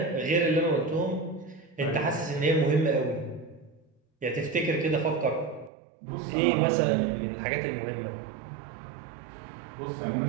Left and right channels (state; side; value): drops out; left; at 5.7 s